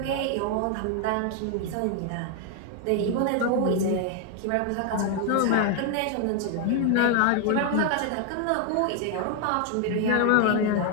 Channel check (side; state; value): both; different; correlation 0.00